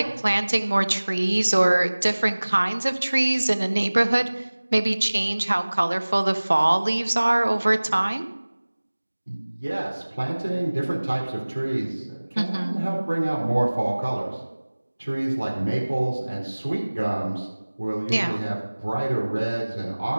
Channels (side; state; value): both; inverted; correlation -1.00